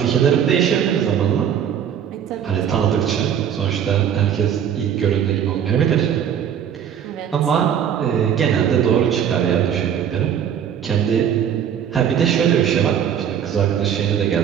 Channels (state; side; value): quieter; left; 8.8 dB